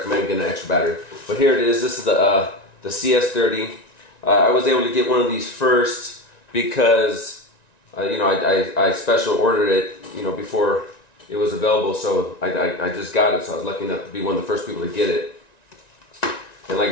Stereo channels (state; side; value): late; right; 1.9 ms